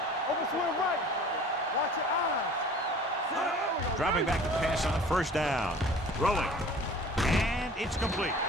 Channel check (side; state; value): both; normal; correlation 0.45